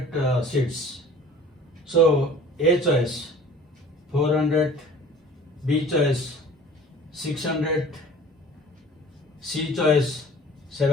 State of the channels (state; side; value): normal; both; correlation 0.46